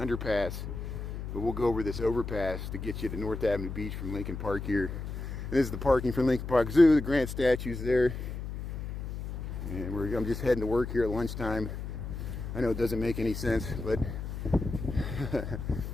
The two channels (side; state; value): left; noise; hum, 6 dB below the sound